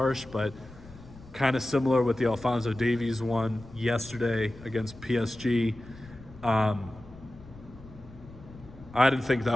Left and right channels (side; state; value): left; noise; rumble, 19 dB below the sound